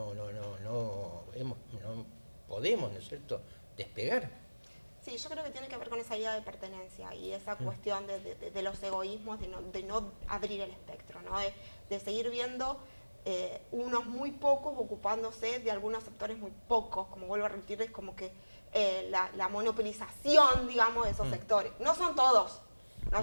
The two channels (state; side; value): inverted; both; correlation -1.00